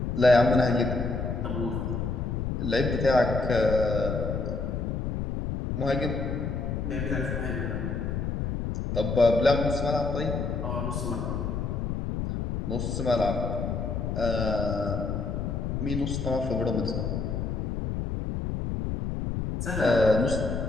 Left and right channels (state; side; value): noise; left; rumble, 2 dB below the sound